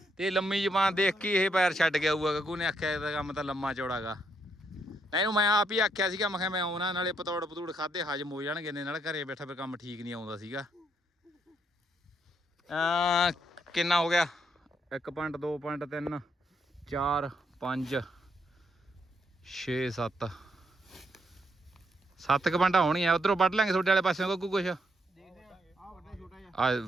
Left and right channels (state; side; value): normal; both; correlation 0.76